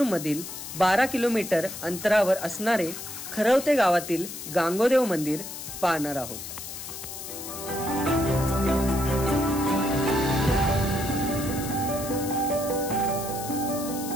12 किलोमीटर अंतरावर असणारे खरवते गावातील गांगोदेव मंदिर पाहणार आहोत.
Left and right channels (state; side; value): noise; left; hiss, 9 dB below the sound